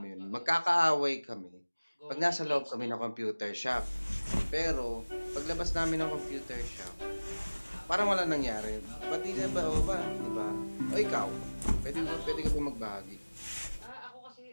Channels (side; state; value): both; inverted; correlation -1.00